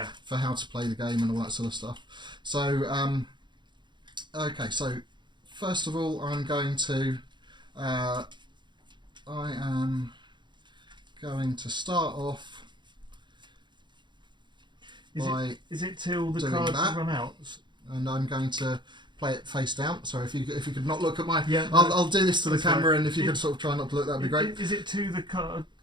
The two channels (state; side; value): late; left; 0.22 ms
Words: how to play the game and all that sort of stuff. So okay. So first of all, I am going to start off. Is it till the cards run out? And I'm going to play it face down. So if you could not look at my, yeah, I'll do this to the camera, and if you could sort of try not to look, that'd be great. Is it to the card